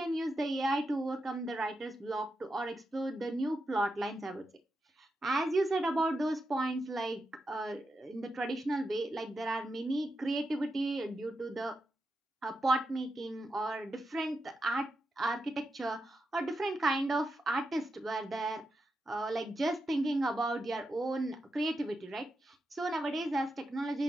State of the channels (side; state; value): both; normal; correlation 0.87